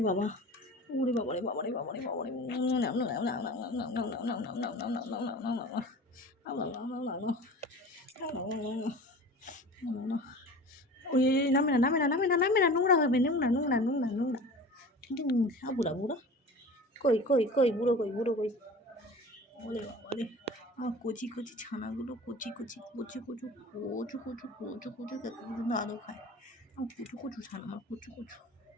বাবা, ওরে বাবারে বাবারে বাবারে বাবারে, ওই নামে না নামে না নামে না নামে না, নোংরা হবে, নোংরা নোংরা নোংরা নোংরা। বুড়া বুড়া কই কই কই, বুড়ো কই, বুড়ো কই। ওরে বাবারে, আমার কচি কচি ছানাগুলো, কচি কচি কচু কচু কচু কচু কচু কচু কত পর্যন্ত আদৌ খায়। আমার কচু কচু ছানা, আমার কচু কচু।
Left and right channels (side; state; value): both; normal; correlation 0.38